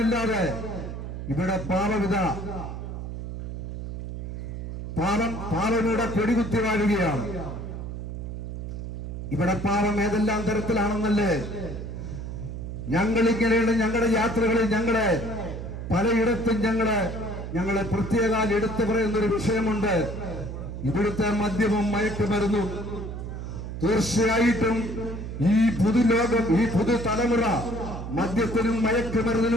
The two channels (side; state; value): right; noise; hum, 7 dB below the sound